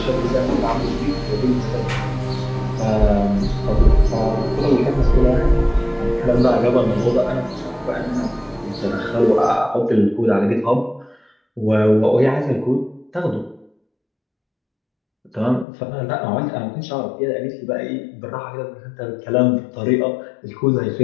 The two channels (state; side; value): drops out; right; at 15.7 s